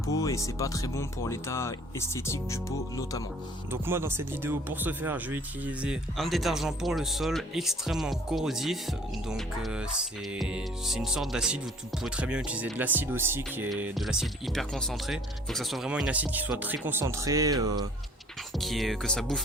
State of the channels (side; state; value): both; normal; correlation 0.53